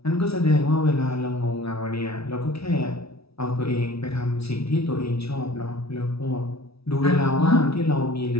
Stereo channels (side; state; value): right; late; 0.77 ms